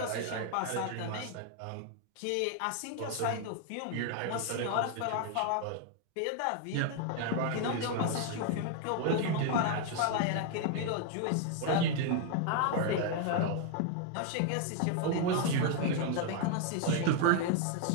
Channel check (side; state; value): both; different; correlation 0.00